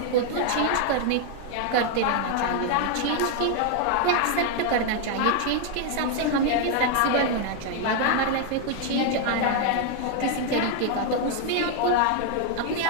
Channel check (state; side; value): different; both; correlation 0.00